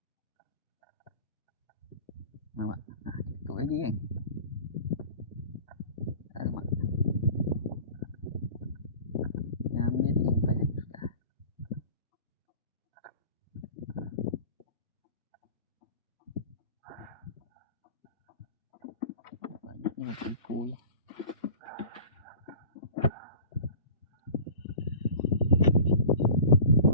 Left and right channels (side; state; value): both; inverted; correlation -0.40